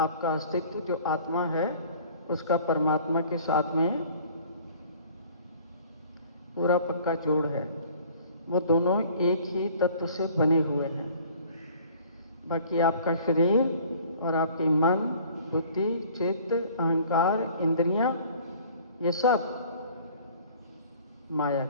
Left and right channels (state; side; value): inverted; both; correlation -0.51